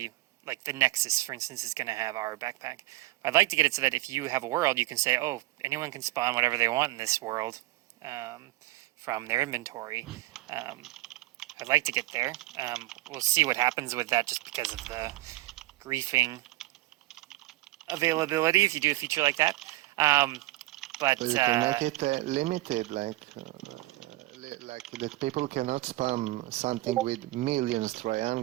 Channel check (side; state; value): left; quieter; 18.5 dB